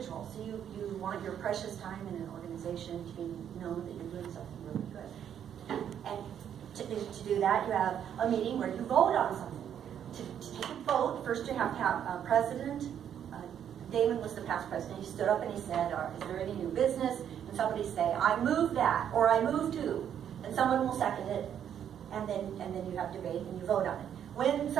So you want your precious time in an organization to be known that you're doing something really good. And to do that, you have a meeting where you vote on something. To take a vote, first you have to have a president. Damon was the past president. He stood up and he said, is there any new business? And somebody say, I move that, or I move to. And someone will second it. And then you have debate and you vote on it. When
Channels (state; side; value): quieter; left; 9.2 dB